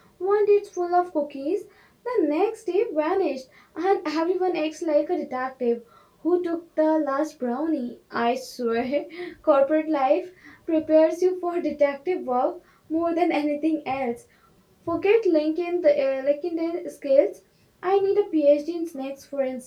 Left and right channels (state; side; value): identical; both; correlation 1.00